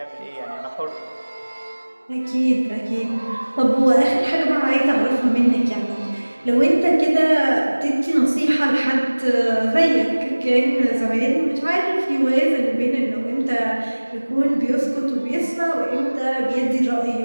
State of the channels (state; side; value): inverted; both; correlation -1.00